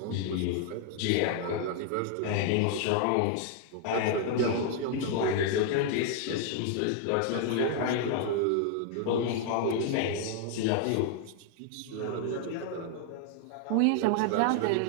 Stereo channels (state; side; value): different; both; correlation 0.00